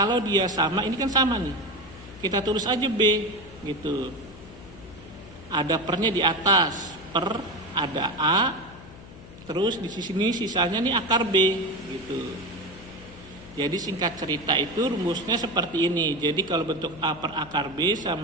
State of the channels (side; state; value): left; noise; hum, 18 dB below the sound